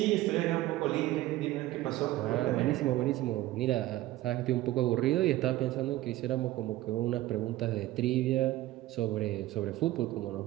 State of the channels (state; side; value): quieter; left; 16.3 dB